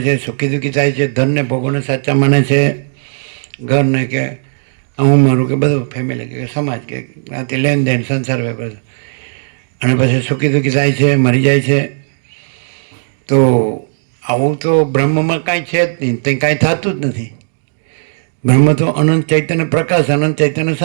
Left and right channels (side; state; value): left; silent; digital silence